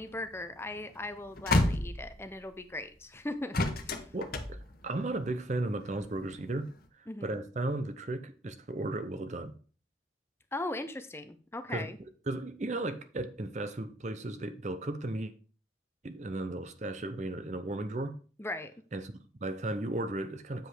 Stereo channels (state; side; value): normal; both; correlation 0.63